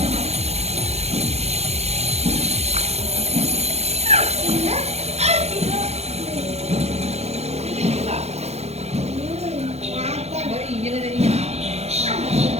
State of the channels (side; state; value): left; late; 0.31 ms